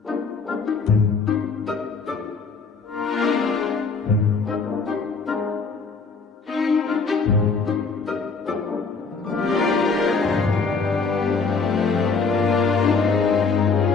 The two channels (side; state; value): right; quieter; 4.6 dB